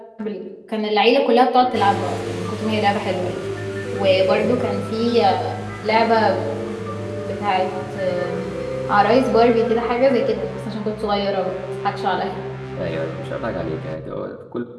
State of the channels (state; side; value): identical; both; correlation 1.00